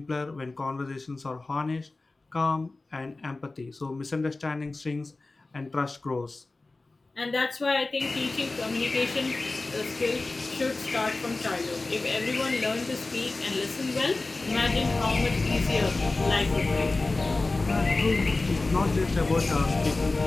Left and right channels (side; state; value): right; quieter; 3.3 dB